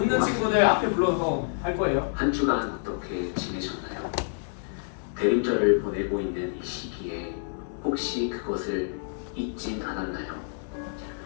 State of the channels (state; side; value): silent; right; 59 dB below the other